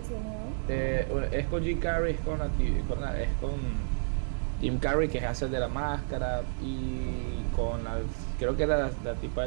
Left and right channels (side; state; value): left; silent; digital silence